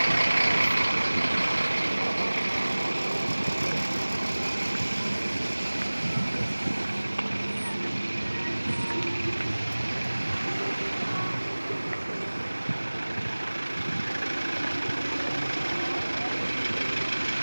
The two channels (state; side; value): inverted; both; correlation -1.00